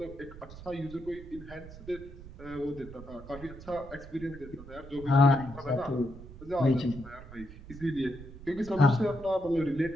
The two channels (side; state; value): right; noise; rumble, 15 dB below the sound